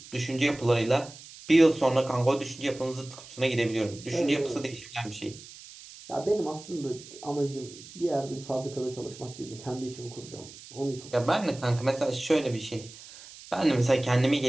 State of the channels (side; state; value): right; noise; hiss, 17 dB below the sound